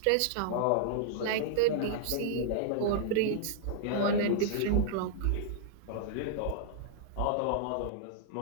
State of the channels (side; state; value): both; different; correlation -0.01